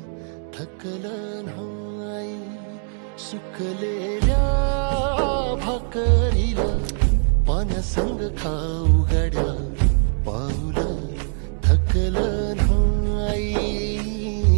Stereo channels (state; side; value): silent; left; 58 dB below the other